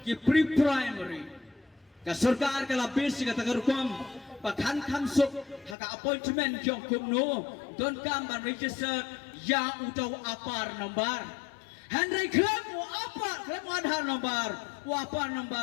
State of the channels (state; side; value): drops out; right; at 5.8 s